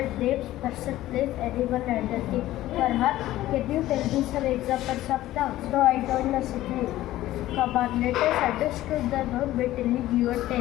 names person, place, animal and a thing. Farhan, can you tell me some examples of dogs? No, I don't know Sajveer. Come on, let us understand the dog by telling you a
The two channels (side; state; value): right; quieter; 15.1 dB